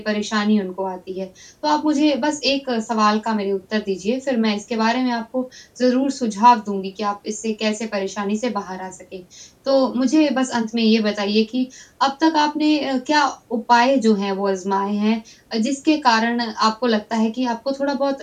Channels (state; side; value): identical; both; correlation 1.00